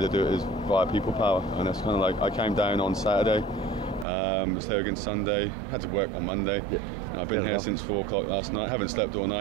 to do it is via people power. And it's kind of like I came down on Saturday. Was there again Sunday. Had to work on Monday. Yep. I've been here since 4 o'clock last night. Haven't slept all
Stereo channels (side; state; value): left; drops out; at 4.0 s